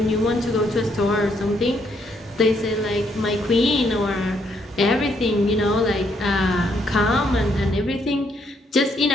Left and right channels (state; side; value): normal; both; correlation 0.72